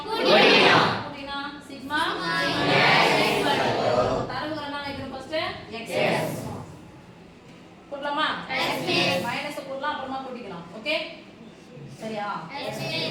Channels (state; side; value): identical; both; correlation 1.00